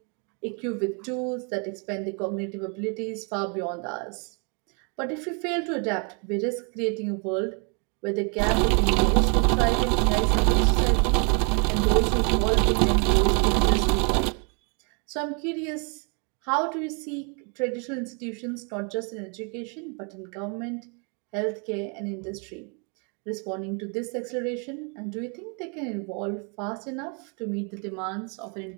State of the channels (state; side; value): quieter; left; 36.5 dB